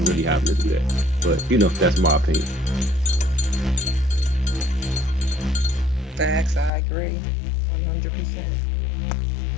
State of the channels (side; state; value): right; drops out; at 6.7 s